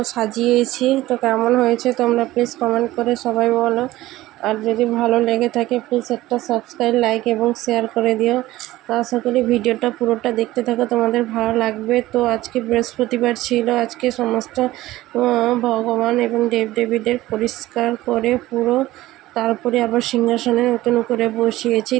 সাজিয়েছি। তো কেমন হয়েছে তোমরা প্লিজ কমেন্ট করে সবাই বলো। আর যদি ভালো লেগে থাকে প্লিজ একটা সাবস্ক্রাইব, লাইক এবং শেয়ার করে দিও। তো আশা করি ভিডিওটা পুরোটা দেখতে থাকো, তোমাদের ভালো লাগবে। তো আজকে বৃহস্পতিবার ছিল। আজকে সমস্ত ভগবান এবং দেবদেবীদের পরিষ্কার করে পুরো, তারপরে আবার সিংহাসনে নতুন করে বসিয়েছি।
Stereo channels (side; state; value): left; quieter; 16.6 dB